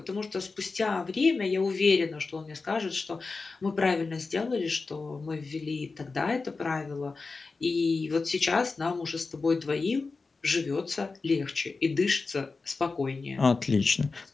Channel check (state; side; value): quieter; right; 4.1 dB